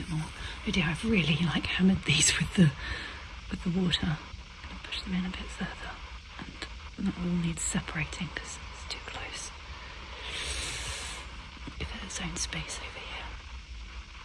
more. Oh dear, I've really hammered these with the water. I'm going to push them in a bit further, and that all needs separating because it's too close. Give it its own space over here.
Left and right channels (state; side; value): identical; both; correlation 1.00